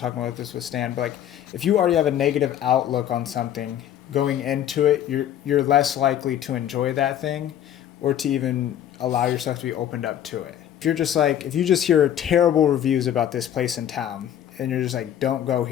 about this with Stan, but if you already have a negative outlook on something going into it, you're less likely to enjoy that thing or to even allow yourself to be opened up to it. If you just hear terrible reviews about this place in town and you're just don't go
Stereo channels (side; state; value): right; quieter; 10.7 dB